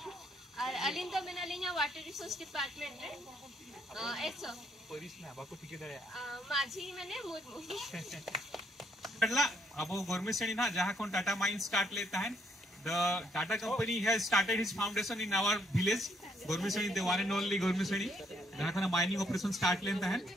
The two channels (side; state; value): both; normal; correlation 0.71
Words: और अली तो बिना अली वाटर रिसोर्स डिपार्टमेंट रे एसो Police ना बाको टिके दे माझी माने मुर्मू पहला अब गवर्नमेंट से ना जहां कौन टाटा माइन स्टार्ट लेता है the Tata company has started his foundation in our village government seni the one and only government seni जहां kana mining operation start लेता है